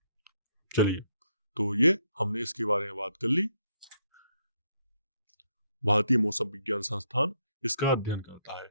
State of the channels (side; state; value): both; inverted; correlation -0.74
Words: चलिए, तो ये हमने इसके बारे में बात कर ली। भारतीय मौसम विज्ञान संस्थान इसका अध्ययन करता है।